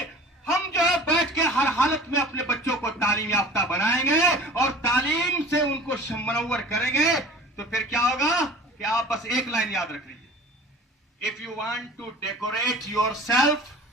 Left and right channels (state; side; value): normal; both; correlation 0.42